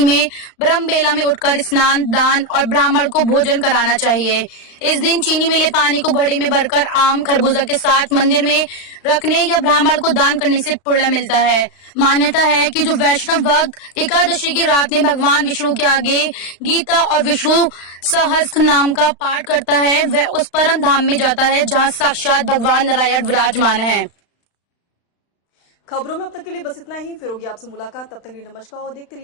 में ब्रह्म बेला में उठकर स्नान, दान और ब्राह्मण को भोजन कराना चाहिए। इस दिन चीनी मिले पानी को घड़े में भरकर आम, खरबूजा के साथ मंदिर में रखने या ब्राह्मण को दान करने से पुण्य मिलता है। मान्यता है कि जो वैष्णव भक्त एकादशी की रात में भगवान विष्णु के आगे गीता और विष्णु सहस्त्र नाम का पाठ करता है, वह उस परम धाम में जाता है जहाँ साक्षात भगवान नारायण विराजमान है। खबरों में अब तक के लिए बस इतना ही। फिर होगी आपसे मुलाकात, तब तक के लिए नमस्कार और देखते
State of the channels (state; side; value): late; right; 35 ms